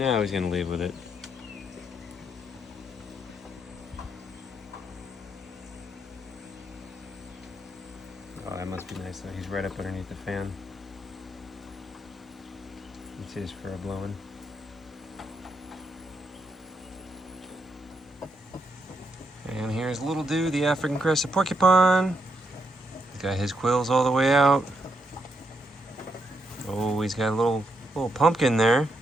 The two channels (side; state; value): both; normal; correlation 0.79